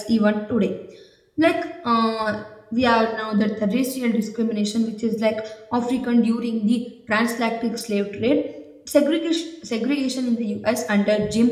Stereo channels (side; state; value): both; identical; correlation 1.00